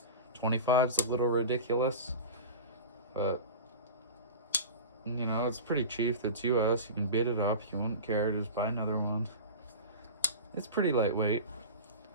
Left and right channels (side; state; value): both; inverted; correlation -0.30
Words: 25's a little ridiculous, but it's pretty cheap. It's US. You can bid it up. You wouldn't care. Just buy another one. It's pretty lightweight.